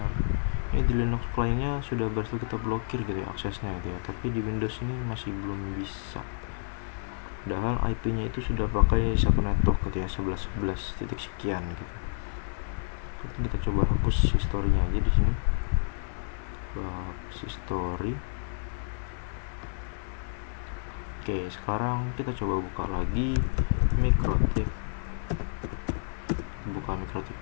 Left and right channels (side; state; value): right; silent; 58 dB below the other